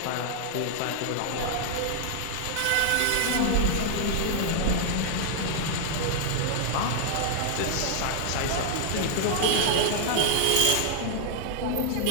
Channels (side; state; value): both; different; correlation -0.01